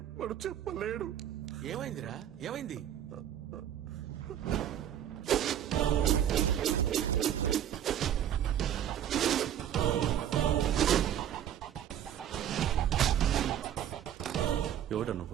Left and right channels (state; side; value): quieter; left; 10.5 dB